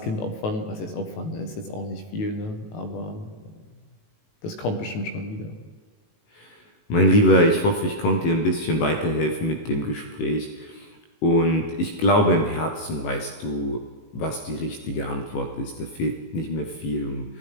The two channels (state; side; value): late; right; 18 ms